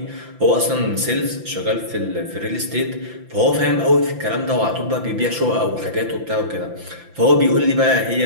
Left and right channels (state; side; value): late; left; 5.9 ms